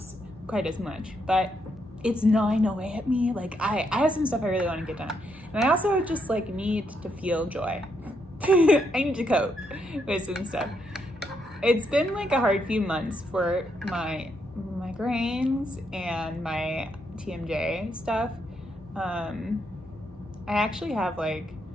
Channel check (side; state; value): both; normal; correlation 0.77